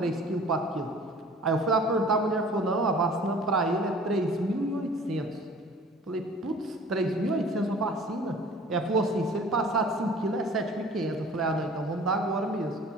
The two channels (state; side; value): normal; both; correlation 0.47